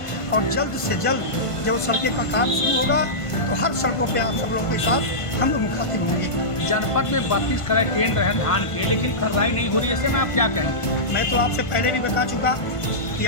और जल्द से जल्द जब सड़कें का काम शुरू होगा तो हर सड़कों पर आप सब लोगों के साथ हम लोग मुखातिब होंगे। जनपद में 32 करोड़ ट्रेन रहे धान के, लेकिन खरीदारी नहीं हो रही, ऐसे में आप क्या कहेंगे? मैं तो आपसे पहले भी बता चुका कि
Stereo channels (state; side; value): late; right; 1.5 ms